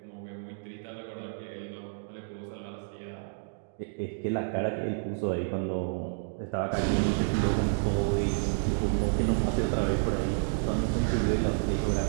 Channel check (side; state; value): left; silent; digital silence